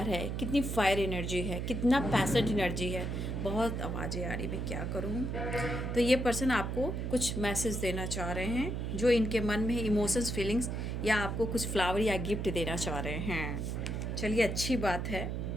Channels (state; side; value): noise; right; hum, 2 dB below the sound